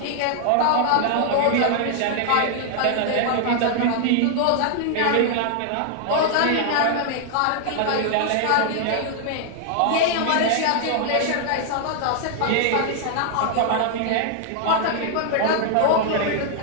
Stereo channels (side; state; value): both; different; correlation 0.00